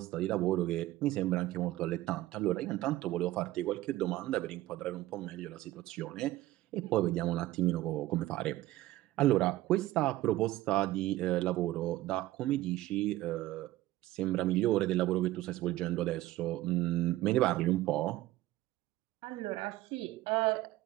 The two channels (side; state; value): left; quieter; 16.2 dB